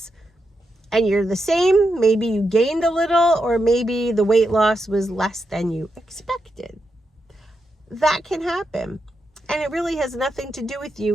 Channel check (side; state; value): both; normal; correlation 0.85